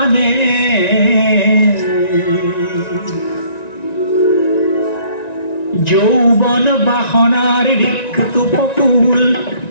যৌবন বাসনার রিক্ত পকুল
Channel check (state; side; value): late; right; 1.9 ms